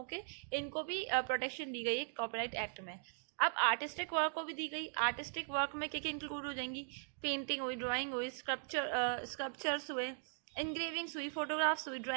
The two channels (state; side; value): silent; left; digital silence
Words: के, इनको भी प्रोटेक्शन दी गई है कॉपीराइट एक्ट में। अब आर्टिस्टिक वर्क को भी दी गई। आर्टिस्टिक वर्क में क्या क्या इंक्लूड हो जाएंगी? पेंटिंग हुई, ड्राइंग हुई, स्कल्पचर्स हुए, इंग्रेविंग्स हुई, फोटोग्राफ्स हुई,